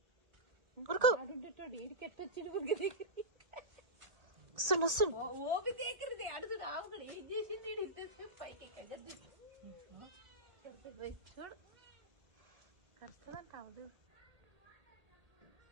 ఉరుకు ఇడికెట్టొచ్చిండు ఊరికి దగ్గర వస్తుండు వస్తుండు ఓపి దగ్గరది అడుగుడు ఆవుగడు ఏం చేసింది ఇంతసేపు పైకి ఎక్కగద్దు చూడు కష్టమంట అవదు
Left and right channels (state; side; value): late; left; 1.8 ms